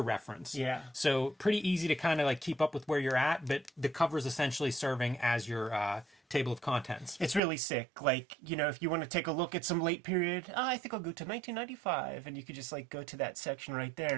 Yeah. So pretty easy to kind of like keep up with where you're at, but the cover is essentially serving as your table of contents. It's really sick. Like, if you want to take a look at some late period, I think I'll go to 1995, and you could just like go to that section right there,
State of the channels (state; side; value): drops out; left; at 7.4 s